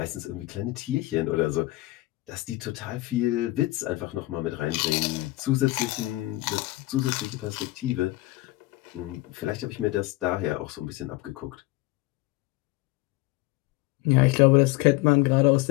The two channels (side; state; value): right; quieter; 19.4 dB